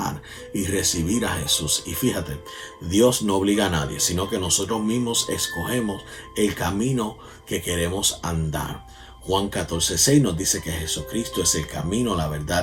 y recibir a Jesús. Y fíjate, Dios no obliga a nadie, sino que nosotros mismos escogemos el camino que queremos andar. Juan 14:6 nos dice que Jesucristo es el camino, la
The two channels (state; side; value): identical; both; correlation 1.00